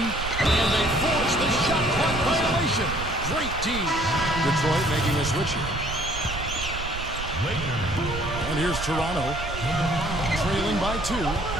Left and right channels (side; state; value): right; noise; rumble, 8 dB below the sound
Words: they force the shot clock violation. Great team. Detroit making a switch here. And here's Toronto. Trailing by 2.